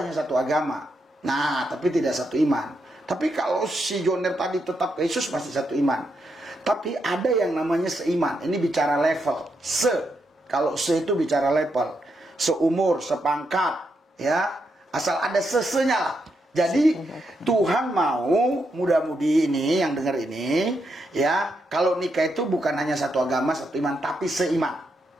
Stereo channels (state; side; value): normal; both; correlation 0.82